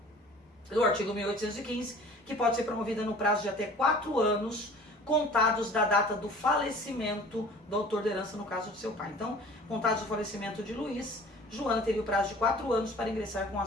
no artigo 1815, que pode ser promovida no prazo de até 4 anos, contados da data do falecimento do autor da herança, no caso do seu pai. Então, contados do falecimento de Luiz, Joana teria o prazo de 4 anos para ingressar com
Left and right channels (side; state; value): both; normal; correlation 0.46